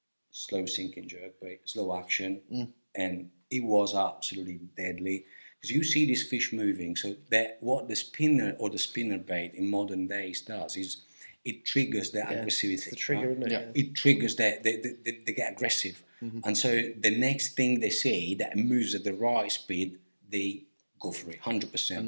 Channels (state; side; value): inverted; both; correlation -1.00